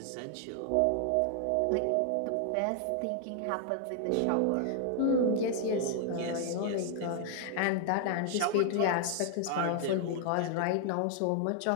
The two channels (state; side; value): different; both; correlation 0.00